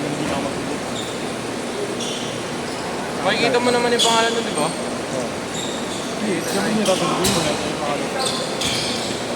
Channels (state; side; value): noise; right; rumble, 26 dB below the sound